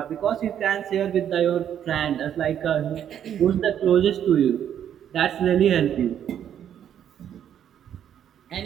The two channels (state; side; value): quieter; left; 9.6 dB